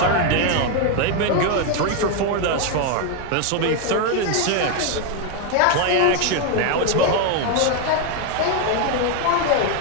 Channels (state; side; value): different; both; correlation 0.01